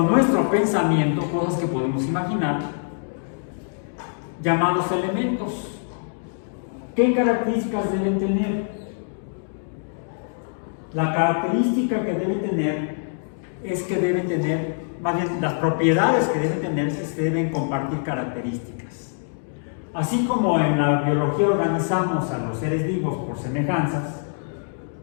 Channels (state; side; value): silent; right; digital silence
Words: nuestro pensamiento, cosas que podemos imaginar, llamados elementos. ¿Qué características deben tener? La característica que deben tener es que deben tener, más bien las propiedades que deben tener es que deben compartir características. Así como en la biología organizamos a los seres vivos por semejanzas,